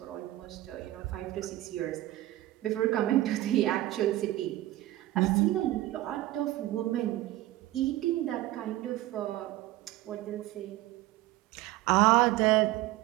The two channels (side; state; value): left; quieter; 16.2 dB